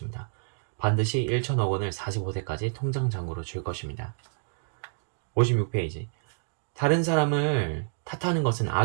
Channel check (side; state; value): left; silent; digital silence